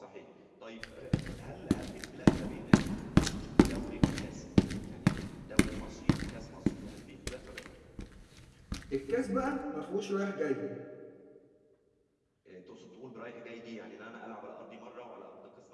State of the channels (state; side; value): identical; both; correlation 1.00